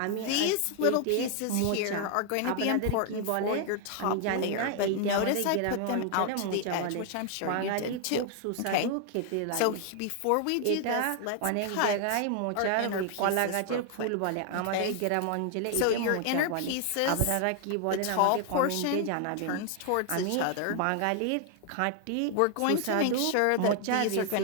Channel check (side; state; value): both; different; correlation 0.00